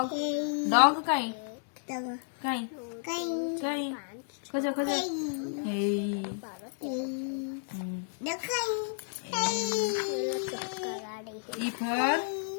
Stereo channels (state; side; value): silent; right; digital silence